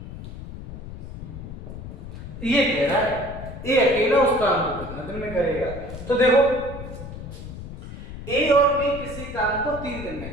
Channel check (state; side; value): noise; left; rumble, 11 dB below the sound